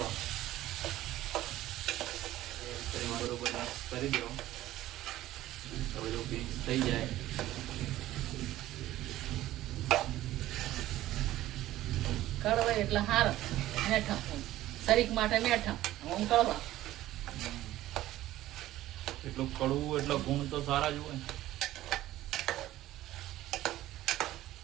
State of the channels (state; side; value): quieter; left; 14.9 dB